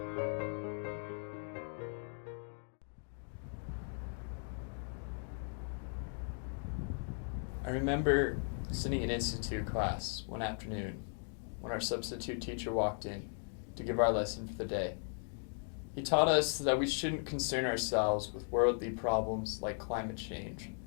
I remember sitting in Institute class one afternoon when our substitute teacher walked in to give our lesson for the day. He taught us that we shouldn't concern ourselves with worldly problems like climate change,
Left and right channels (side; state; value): right; silent; 53 dB below the other